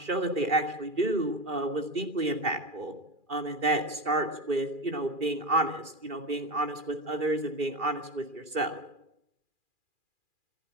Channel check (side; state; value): left; late; 2.4 ms